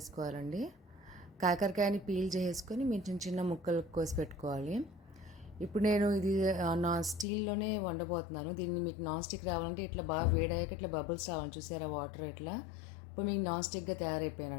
కాకరకాయని పీల్ చేసుకొని మీరు చిన్న చిన్న ముక్కలు కోసి పెట్టుకోవాలి. ఇప్పుడు నేను ఇది స్టీల్లోనే వండబోతున్నాను. దీన్ని మీకు నాన్ స్టిక్ రావాలంటే ఇట్లా బాగా వేడయ్యాక ఇట్లా బబుల్స్ రావాలి, చూసారా వాటర్ ఇట్లా. ఇప్పుడు మీకు నాన్ స్టిక్గా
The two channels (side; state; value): right; drops out; at 7.2 s